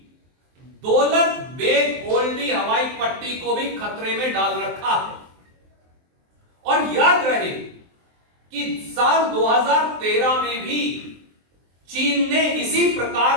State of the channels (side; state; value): left; late; 23 ms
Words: दौलत बेग ओल्डी हवाई पट्टी को भी खतरे में डाल रखा है। और याद रहे कि साल 2013 में भी चीन ने इसी